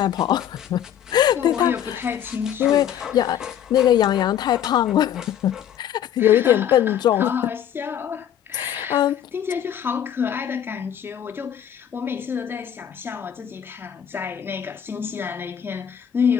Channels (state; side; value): quieter; right; 9.9 dB